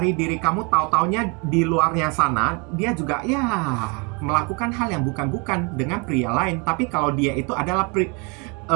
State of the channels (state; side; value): quieter; left; 31.6 dB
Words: diri kamu, tahu-taunya di luarnya sana dia juga ya melakukan hal yang bukan-bukan dengan pria lain. Tapi kalau dia itu adalah